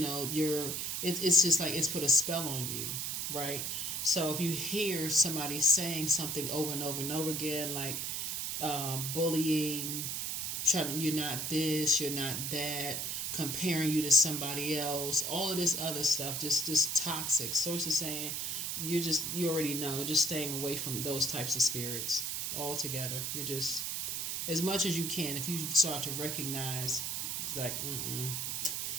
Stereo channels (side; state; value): right; noise; hiss, 2 dB below the sound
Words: it's just like it's put a spell on you, right? So if you hear somebody saying something over and over and over again, like bullying, you're not this, you're not that, comparing you to somebody else, all of this other stuff, just toxic. Source is saying you already know, just staying away from those types of spirits altogether. You're just, as much as you can, if you start to recognize, it's like,